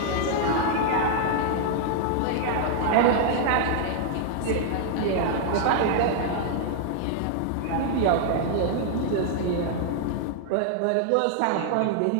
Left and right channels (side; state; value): both; different; correlation -0.01